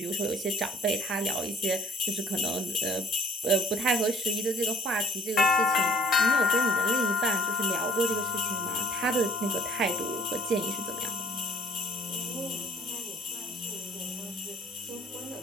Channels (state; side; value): normal; both; correlation 0.58